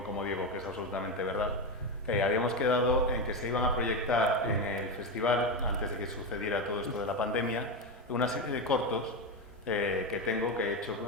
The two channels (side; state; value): both; normal; correlation 0.13